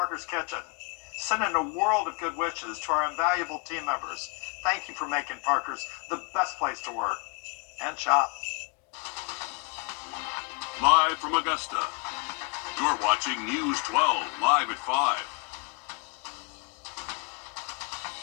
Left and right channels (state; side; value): quieter; right; 33.2 dB